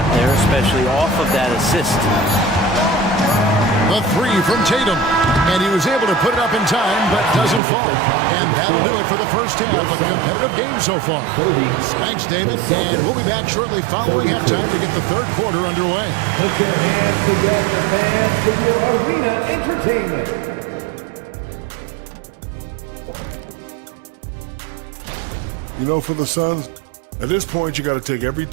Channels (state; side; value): drops out; left; at 7.6 s